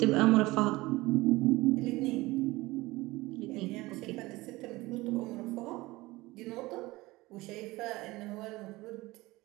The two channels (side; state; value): left; quieter; 20.3 dB